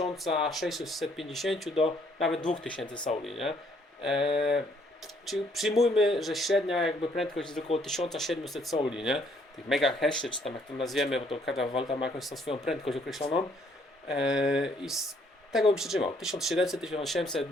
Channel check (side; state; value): both; normal; correlation 0.66